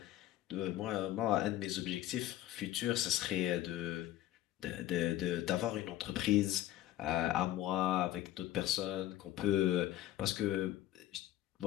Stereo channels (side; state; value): right; quieter; 14.0 dB